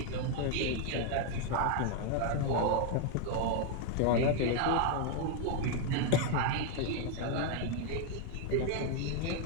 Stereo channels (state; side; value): different; both; correlation 0.00